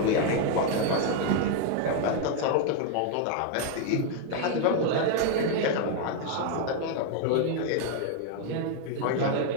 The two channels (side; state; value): both; different; correlation 0.00